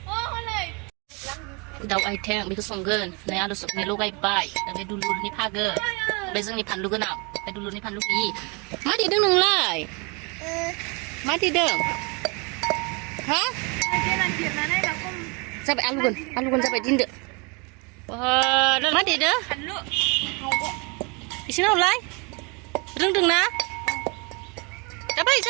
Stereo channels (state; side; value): quieter; left; 30.8 dB